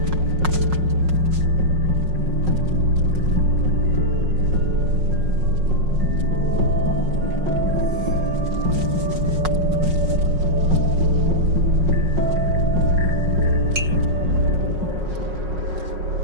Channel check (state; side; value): late; left; 5.5 ms